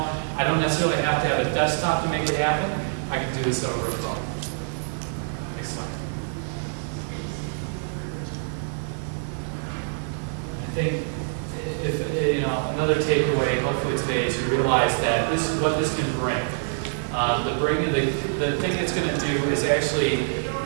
I don't necessarily have to have a desktop to make it happen. I can do this over a phone. Next slide. I think another takeaway, hopefully today, is you realize that what this can bring. The thing it's going to do is actually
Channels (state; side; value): silent; left; digital silence